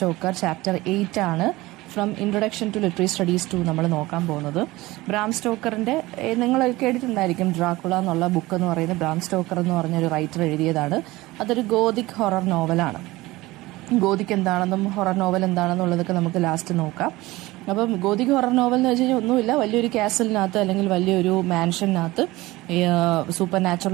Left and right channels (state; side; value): quieter; left; 19.6 dB